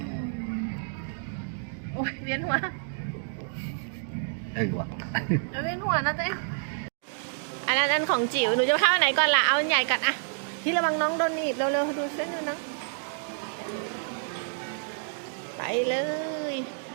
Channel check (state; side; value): silent; left; digital silence